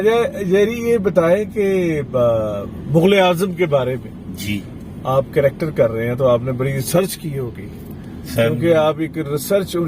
جیری، یہ بتائیں کہ مغل اعظم کے بارے میں جی آپ کریکٹر کر رہے ہیں تو آپ نے بڑی ریسرچ کی ہوگی، سر، کیونکہ آپ ایک ریسرچ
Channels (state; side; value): identical; both; correlation 1.00